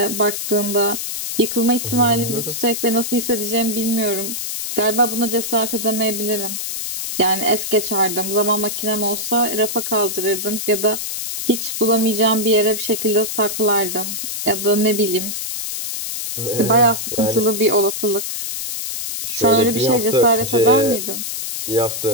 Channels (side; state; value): left; noise; hiss, 4 dB below the sound